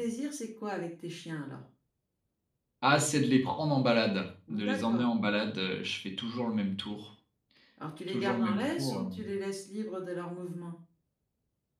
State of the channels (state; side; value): identical; both; correlation 1.00